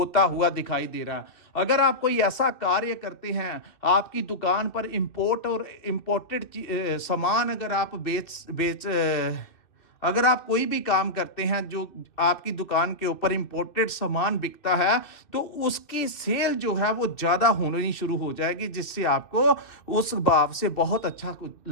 हुआ दिखाई दे रहा है। अगर आप कोई ऐसा कार्य करते हैं, आपकी दुकान पर इंपोर्ट और इंपोर्टेड सामान अगर आप अगर आप कोई भी काम करते हैं जो आपकी दुकान के ऊपर इंपोर्टेड सामान बिकता है, तो उसकी सेल जो है वो ज्यादा होनी शुरू हो जाएगी, जिससे आपको उस भाव से बहुत अच्छा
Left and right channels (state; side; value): late; right; 2.7 ms